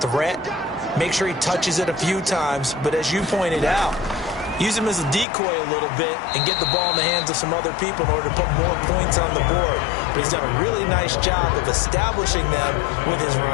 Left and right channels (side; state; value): right; drops out; at 5.2 s